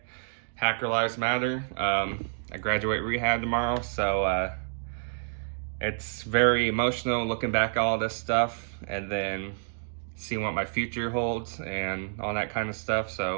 Hacker Lives Matter. I graduate rehab tomorrow, so it's very emotional looking back at all this stuff and then seeing what my future holds and all that kind of stuff.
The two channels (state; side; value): silent; left; digital silence